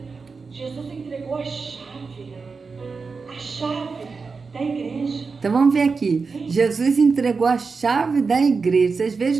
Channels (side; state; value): left; quieter; 4.7 dB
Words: Jesus entregou a chave da igreja. Então vamos ver aqui. Jesus entregou a chave da igreja. Vocês